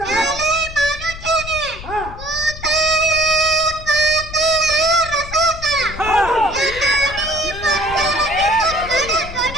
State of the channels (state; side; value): noise; left; rumble, 12 dB below the sound